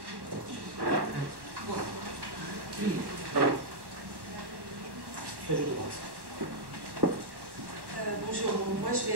Bonjour, moi je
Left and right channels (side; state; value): left; late; 1.1 ms